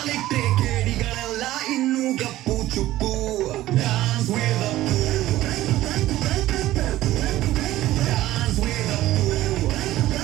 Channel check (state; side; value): quieter; left; 15.3 dB